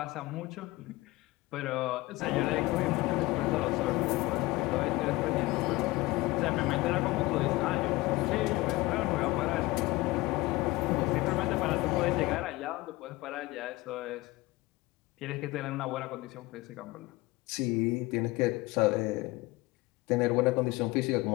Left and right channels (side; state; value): right; quieter; 20.4 dB